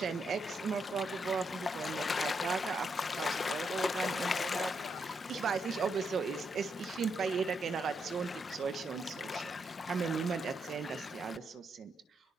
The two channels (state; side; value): normal; both; correlation 0.79